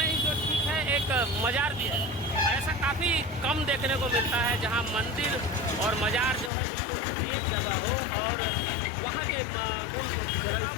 ही जो ठीक है एक मजार भी है। ऐसा काफ़ी कम देखने को मिलता है जहाँ मंदिर और मजार जो है बिल्कुल एक जगह हो और वहाँ के उन मान्यताओं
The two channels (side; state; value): right; drops out; at 6.5 s